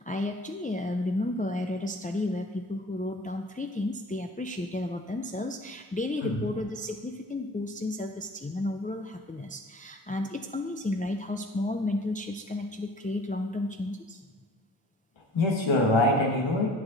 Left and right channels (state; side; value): normal; both; correlation 0.48